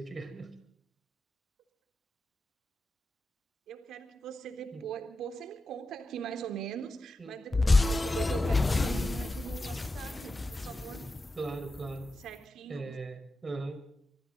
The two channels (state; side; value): normal; both; correlation 0.91